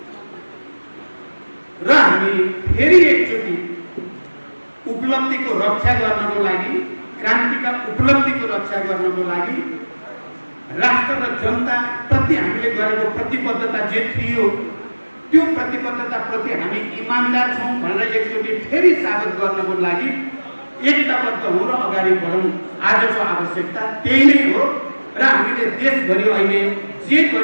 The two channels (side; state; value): both; inverted; correlation -1.00